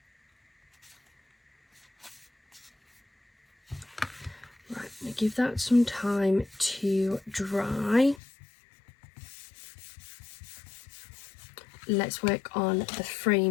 Right, I'm going to give that some time to dry. Let's work on the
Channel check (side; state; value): right; drops out; at 8.2 s